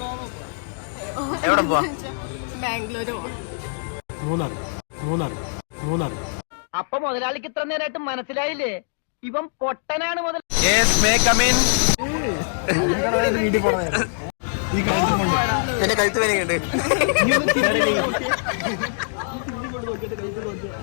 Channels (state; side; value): silent; right; digital silence